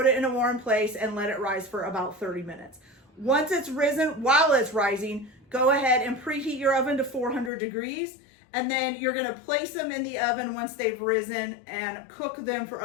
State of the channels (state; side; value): drops out; right; at 7.5 s